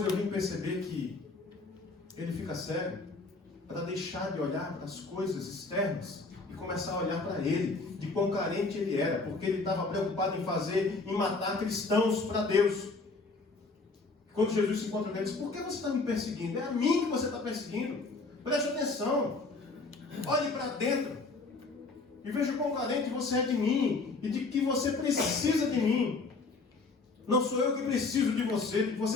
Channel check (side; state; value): right; quieter; 3.8 dB